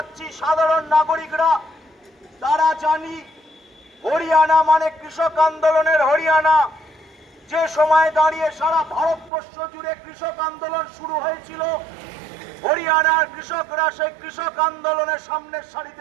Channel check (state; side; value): drops out; left; at 9.3 s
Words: সাধারণ নাগরিকরা, তারা জানি হরিয়ানা মানে কৃষক আন্দোলনের হরিয়ানা। যে সময় দাঁড়িয়ে সারা ভারতবর্ষ জুড়ে কৃষক আন্দোলন শুরু হয়েছিল, হরিয়ানার কৃষকরা সেই কৃষক আন্দোলনের সামনের